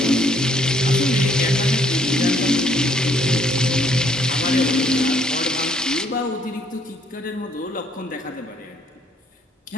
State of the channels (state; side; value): normal; both; correlation 0.66